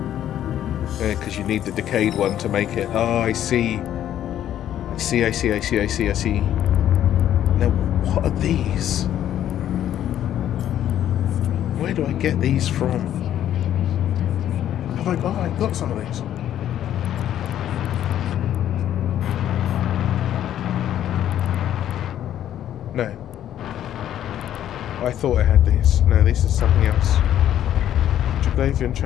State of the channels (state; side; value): quieter; right; 11.2 dB